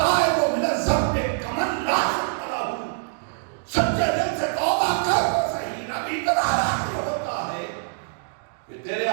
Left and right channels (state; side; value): silent; left; digital silence